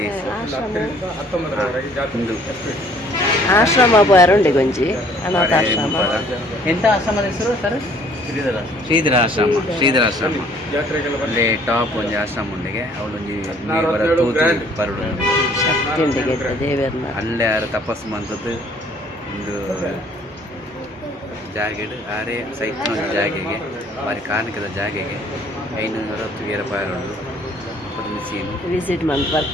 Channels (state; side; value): normal; both; correlation 0.58